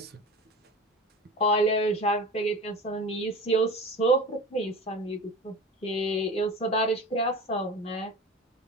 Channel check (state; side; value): normal; both; correlation 0.33